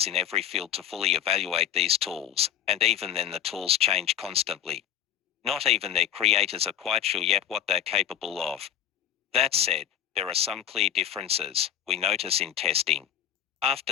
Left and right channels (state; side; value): quieter; right; 10.3 dB